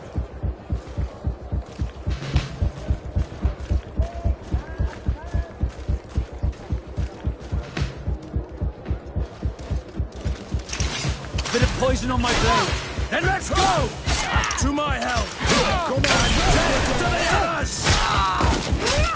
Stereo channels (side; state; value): both; identical; correlation 1.00